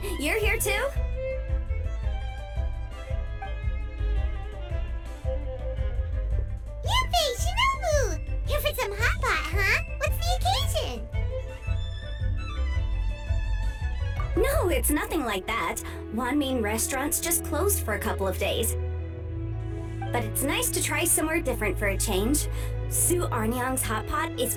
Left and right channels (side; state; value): both; identical; correlation 1.00